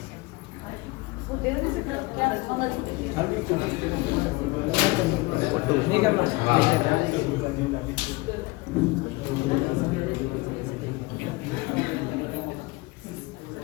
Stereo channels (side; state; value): right; quieter; 23.7 dB